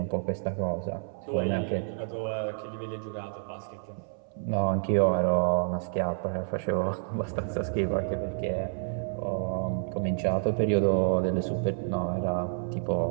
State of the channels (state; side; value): silent; left; 58 dB below the other